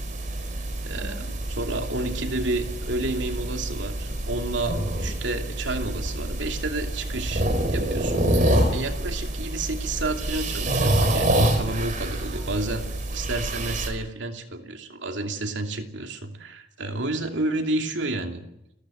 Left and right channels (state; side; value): normal; both; correlation 0.52